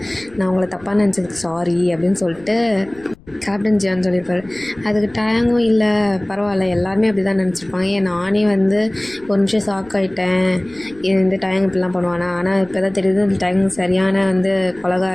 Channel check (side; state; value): left; noise; rumble, 25 dB below the sound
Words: நான் உங்களை தப்பாக நினச்சதுக்கு சாரி அப்படின்னு சொல்லிட்டு கேப்டன் ஜியான் சொல்லியிருப்பார். அதுக்கு டயங்கும் இல்லை, பரவாயில்ல, எல்லாருமே அப்படி தான் நினச்சிருப்பாங்க. நானே வந்து ஒரு நிமிஷம் ஷாக் ஆகிட்டேன், இந்த டயங் இப்படிலாம் பண்ணுவானா. ஆனால் இப்போ தான் தெரியுது இந்த டயங் சரியான வந்து